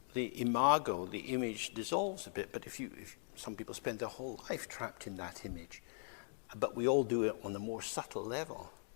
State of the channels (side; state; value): right; silent; digital silence